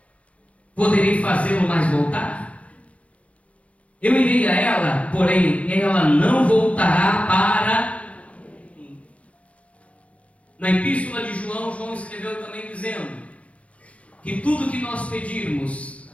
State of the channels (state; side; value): late; right; 0.064 ms